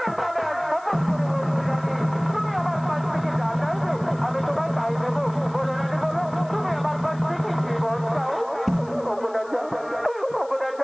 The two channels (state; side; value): noise; left; hiss, 27 dB below the sound